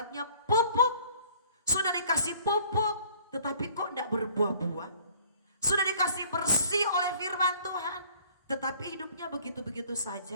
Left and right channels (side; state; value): both; inverted; correlation -0.54